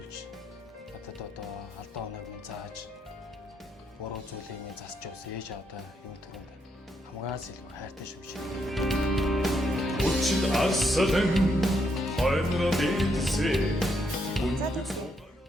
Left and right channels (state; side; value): normal; both; correlation 0.77